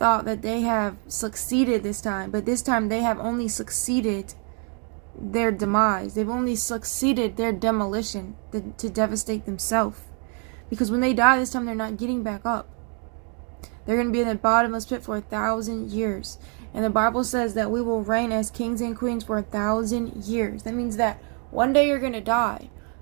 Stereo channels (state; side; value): quieter; left; 39.7 dB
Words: that they have succeeded this time, but this time they have only succeeded their demise. They've only succeeded their demolition to devastate themselves. Because when they die this time, they're not getting back up. They're going to be in the bottomless pit for 1,000 years. And the Bible says that we will reign as kings and queens for 1,000 years. That means that one day you're going to die.